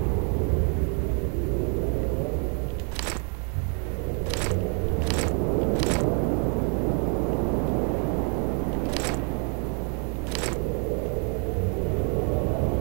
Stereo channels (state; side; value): quieter; left; 39.0 dB